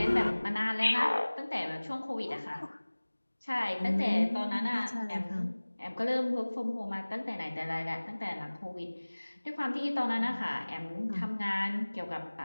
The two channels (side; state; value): both; inverted; correlation -1.00